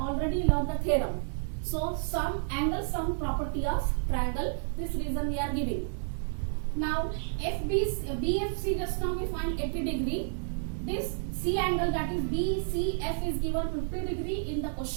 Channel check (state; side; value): silent; left; digital silence